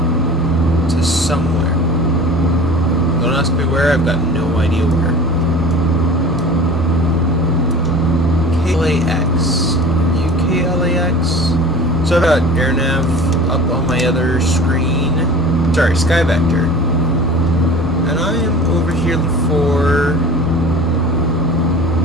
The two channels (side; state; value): both; normal; correlation 0.40